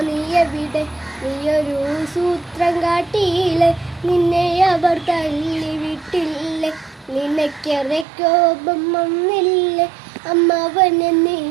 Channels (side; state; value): left; drops out; at 8.1 s